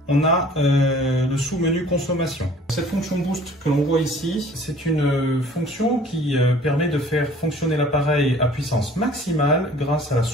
on a le sous-menu consommation. Cette fonction boost que l'on voit ici, c'est une fonction qui permet de faire fonctionner l'appareil à puissance maximale grâce à la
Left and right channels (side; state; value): both; normal; correlation 0.51